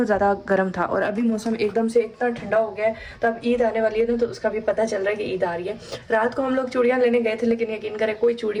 ज़्यादा गर्म था और अभी मौसम एकदम से इतना ठंडा हो गया है। तो अब ईद आने वाली है ना, तो उसका भी पता चल रहा है कि ईद आ रही है। रात को हम लोग चूड़ियाँ लेने गए थे, लेकिन यकीन करें कोई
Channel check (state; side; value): identical; both; correlation 1.00